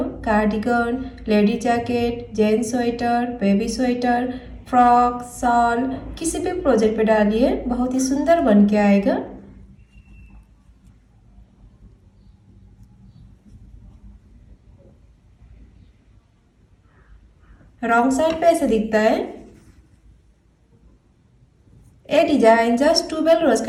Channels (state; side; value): identical; both; correlation 1.00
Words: Cardigan, lady jacket, gents sweater, baby sweater, frock, shawl, किसी भी प्रोजेक्ट पे डालिए, बहुत ही सुंदर बन के आएगा। रॉन्ग साइड पे ऐसे दिखता है। ये डिजाइन जस्ट ट्यूबेल रोज